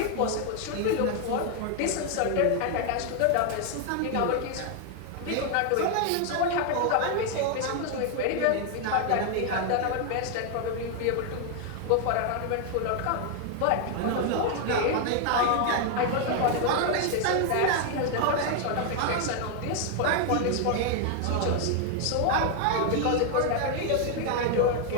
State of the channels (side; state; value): both; different; correlation 0.00